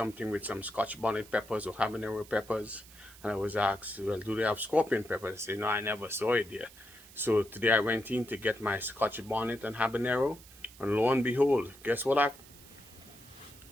with some Scotch bonnet peppers or habanero peppers, and I was asked, well, do they have scorpion peppers? I say, no, I never saw it there. So today I went in to get my Scotch bonnet and habanero, and lo and behold, guess what I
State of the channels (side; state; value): right; noise; hiss, 21 dB below the sound